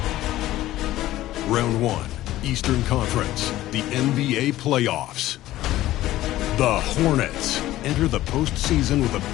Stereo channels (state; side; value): quieter; right; 15.2 dB